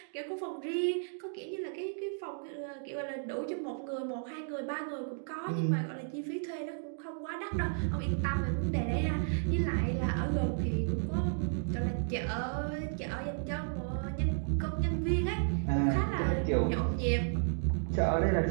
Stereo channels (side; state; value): left; silent; digital silence